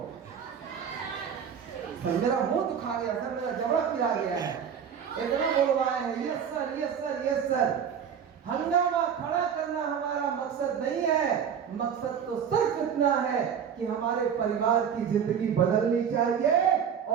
सर मेरा मुंह दुखा गया, सर मेरा जबड़ा पिरा गया है, इतना बोलवाए हैं, yes sir, yes sir, yes sir. हंगामा खड़ा करना हमारा मकसद नहीं है। मकसद तो सिर्फ इतना है कि हमारे परिवार की जिंदगी बदलनी चाहिए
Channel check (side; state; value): left; quieter; 7.8 dB